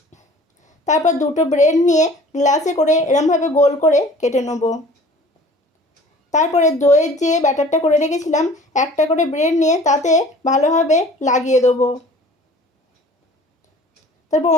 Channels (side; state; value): both; normal; correlation 0.47